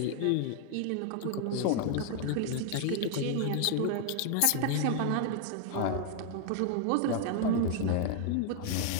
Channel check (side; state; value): both; different; correlation 0.00